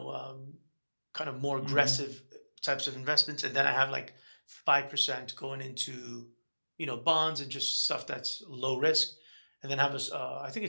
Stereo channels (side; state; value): both; inverted; correlation -1.00